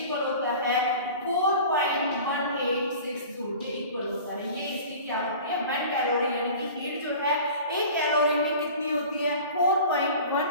इक्वल होता है? 4.1862 के इक्वल होता है। ये इसकी क्या होती है? 1 कैलोरी, यानी कि हीट जो है 1 कैलोरी में कितनी होती है?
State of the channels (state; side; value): inverted; both; correlation -0.40